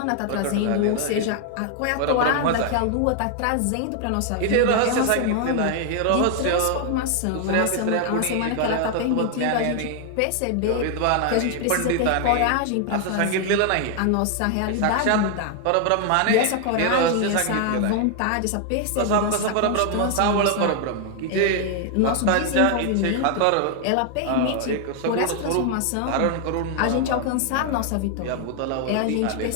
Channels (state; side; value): different; both; correlation 0.00